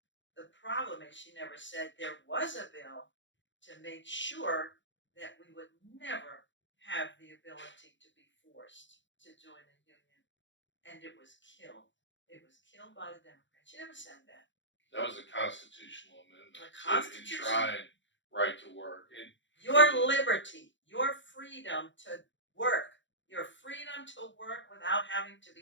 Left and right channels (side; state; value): right; late; 0.54 ms